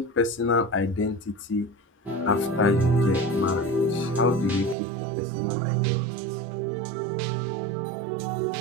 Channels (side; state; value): left; drops out; at 4.8 s